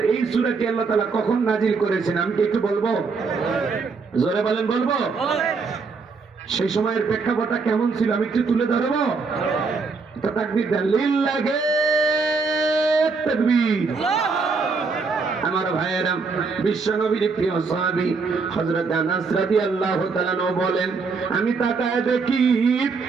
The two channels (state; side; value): quieter; left; 4.6 dB